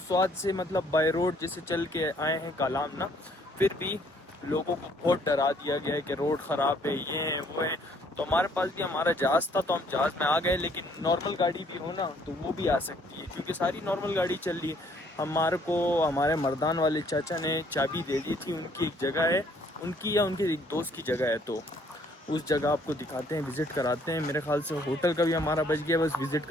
से मतलब बाय रोड जैसे चल के आए हैं कालाम ना, फिर भी लोगों को बहुत डरा दिया गया है कि रोड ख़राब है, ये है वो है। तो हमारे पास भी हमारा जहाज़ था, तो हम जहाज़ में आ गए। लेकिन नॉर्मल गाड़ी भी हो ना, तो वो भी आ सकती है, क्योंकि सारी नॉर्मल गाड़ी चल रही है। हमारे को हमारे मर्दान वाले चाचा ने चाबी दे दी थी, उनकी एक जगह है, उनकी या उनके एक दोस्त की जगह है। तो उस जगह आपको दिखाते हैं, विज़िट कराते हैं। मेरे ख्याल से होटल का भी हमारा बच गया, बस विज़िट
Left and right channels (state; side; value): normal; both; correlation 0.63